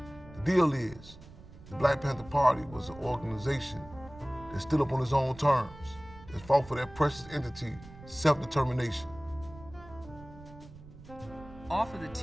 The deal is, the Black Panther Party was an organization that stood up on its own terms, that fought for that precious entity, self-determination. Off of the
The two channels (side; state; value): right; noise; rumble, 18 dB below the sound